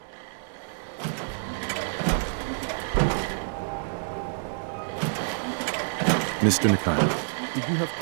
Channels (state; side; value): silent; left; digital silence